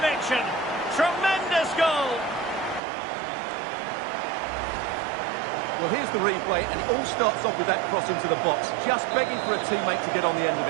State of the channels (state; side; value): drops out; left; at 2.8 s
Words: Tremendous goal. Well, here's the replay, and it all starts off with that cross into the box, just begging for a teammate to get on the end of